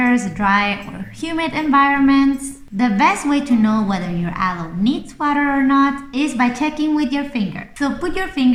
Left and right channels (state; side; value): identical; both; correlation 1.00